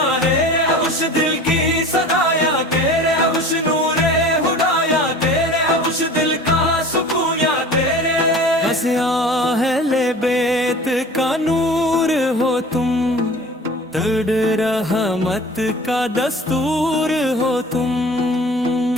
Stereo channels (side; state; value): both; normal; correlation 0.41